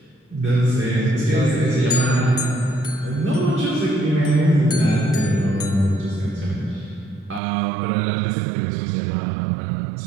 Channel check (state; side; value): drops out; left; at 7.4 s